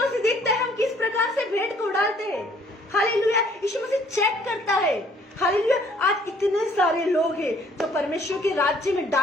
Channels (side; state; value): both; normal; correlation 0.60